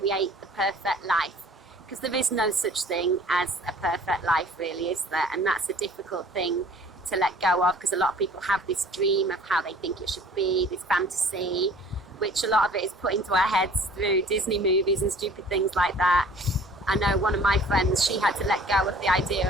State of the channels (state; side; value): normal; both; correlation 0.50